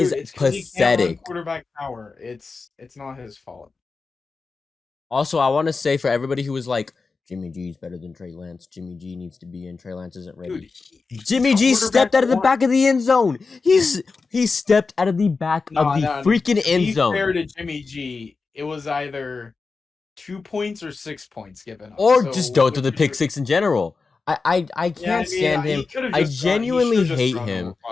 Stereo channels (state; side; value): quieter; right; 4.4 dB